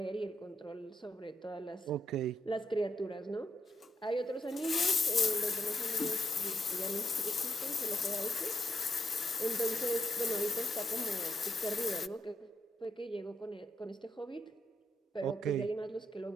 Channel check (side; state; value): both; normal; correlation 0.81